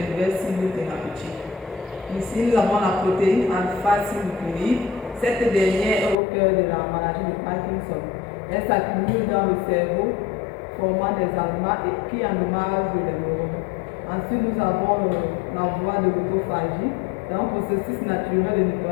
cibles thérapeutiques. Ici, nous avons la protéine alpha-synucléine. Cette dernière est au cœur de la maladie de Parkinson. Elle s'accumule dans le cerveau, formant des aliments qui endommagent les neurones. Ensuite, nous avons la voie de l'autophagie. C'est un processus naturel de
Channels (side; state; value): right; drops out; at 6.2 s